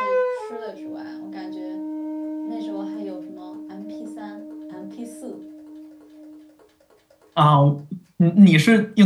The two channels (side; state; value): both; identical; correlation 1.00